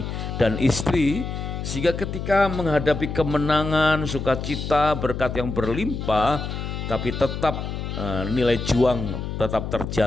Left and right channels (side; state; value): left; noise; hum, 5 dB below the sound